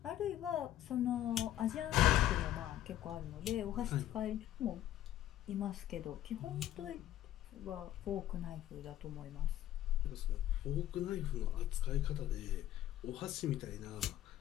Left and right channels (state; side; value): quieter; right; 12.9 dB